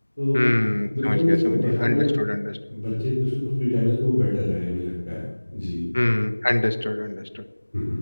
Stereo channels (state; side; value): inverted; both; correlation -1.00